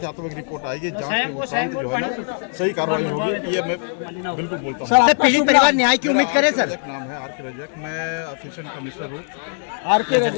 रिपोर्ट आएगी जांच के उपरांत जो है ना सही कार्रवाई होगी, ये मैं बिल्कुल बोलता हूँ। सर पीड़ित परिवार न्याय की उम्मीद करे सर? नाम है आर के रजक, मैं असिस्टेंट कमिश्नर हूँ। आर के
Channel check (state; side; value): silent; right; 65 dB below the other